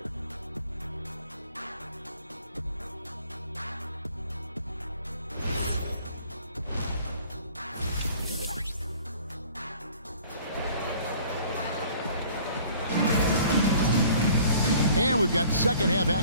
And we've got second half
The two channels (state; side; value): inverted; both; correlation -0.52